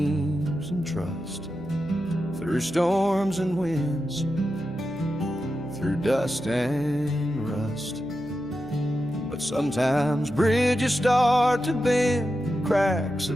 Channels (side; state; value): right; noise; hum, 17 dB below the sound